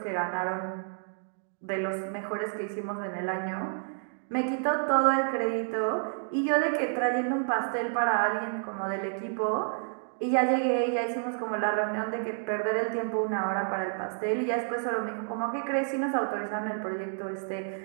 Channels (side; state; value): left; silent; digital silence